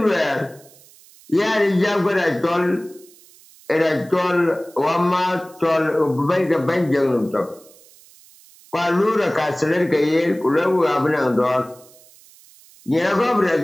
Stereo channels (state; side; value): noise; right; hiss, 25 dB below the sound